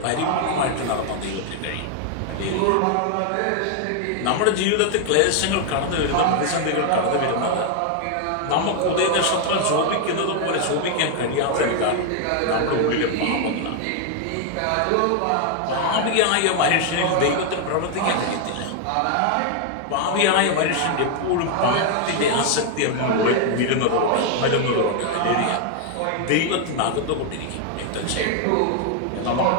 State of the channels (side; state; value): both; different; correlation 0.00